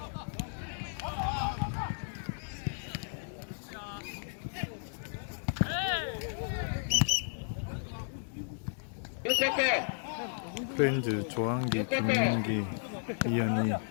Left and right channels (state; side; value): silent; right; digital silence